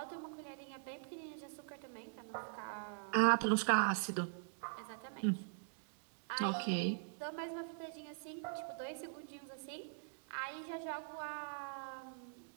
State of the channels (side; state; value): left; silent; digital silence